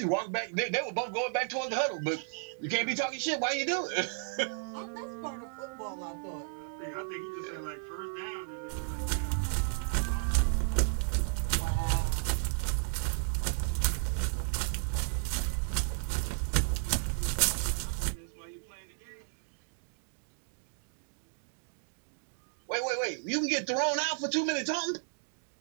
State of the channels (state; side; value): silent; left; 55 dB below the other